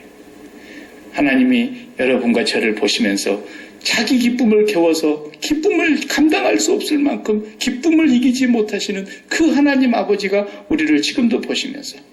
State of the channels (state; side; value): identical; both; correlation 1.00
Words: 하나님이 여러분과 저를 보시면서 자기 기쁨을 겨워서 기쁨을 감당할 수 없을 만큼 기쁨을 이기지 못하시는 그 하나님 아버지가 우리를 지금도 보시면서